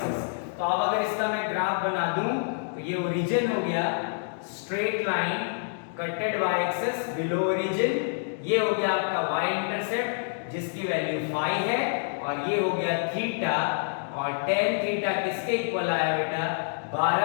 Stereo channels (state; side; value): silent; right; digital silence